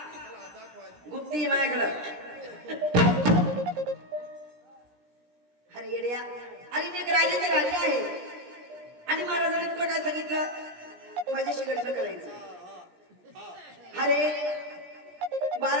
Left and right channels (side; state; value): left; late; 17 ms